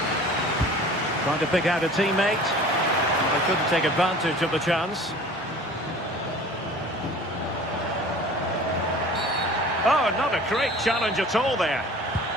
Trying to pick out a teammate. They couldn't take advantage of the chance. Oh, not a great challenge at all there.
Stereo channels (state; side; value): normal; both; correlation 0.44